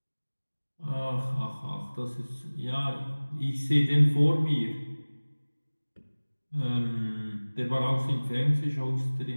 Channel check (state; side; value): inverted; both; correlation -1.00